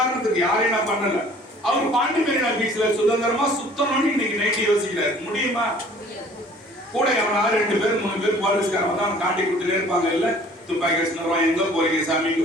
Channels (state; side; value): normal; both; correlation 0.52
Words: யாரையும் நான் பண்ணல, அவர் பாண்டி மெரினா பீச்ல சுதந்திரமா சுத்தணும்னு இன்னைக்கு நைட்டு யோசிக்கிறாரு. முடியுமா? கூட எவனாவது 2 பேர் 3 பேர் போலீஸ்காரன் வந்து அவன் காட்டி கொடுத்துட்டே இருப்பாங்க. இல்ல துப்பாக்கி வச்சுருவான், எங்க போறீங்க சாமி,